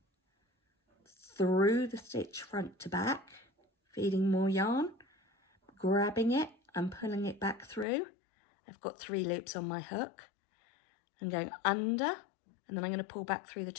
through the stitch front to back, feeding more yarn, grabbing it and pulling it back through. I've got 3 loops on my hook. I'm going under, and then I'm going to pull back through the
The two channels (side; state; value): right; drops out; at 7.9 s